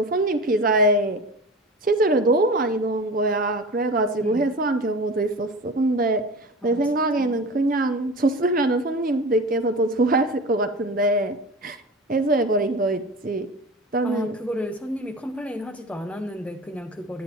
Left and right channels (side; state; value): both; normal; correlation 0.33